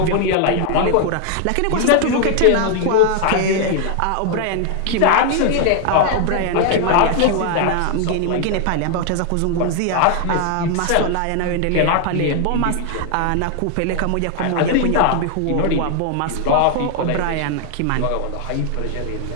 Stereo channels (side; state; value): both; different; correlation 0.00